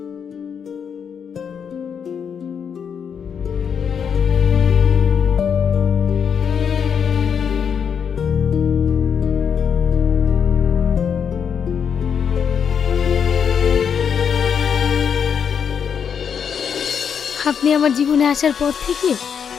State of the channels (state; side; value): quieter; right; 7.3 dB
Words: আপনি আমার জীবনে আসার পর থেকে